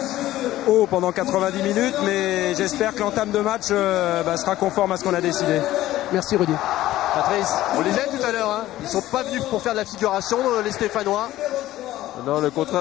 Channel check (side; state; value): right; quieter; 15.0 dB